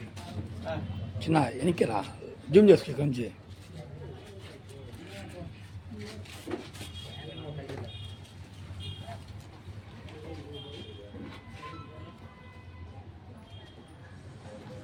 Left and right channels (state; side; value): identical; both; correlation 1.00